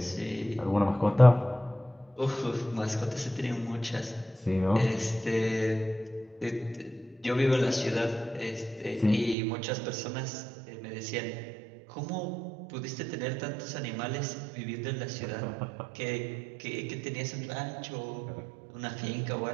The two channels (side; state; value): left; drops out; at 9.3 s